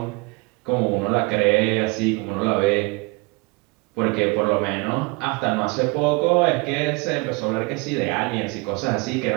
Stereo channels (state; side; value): quieter; left; 27.6 dB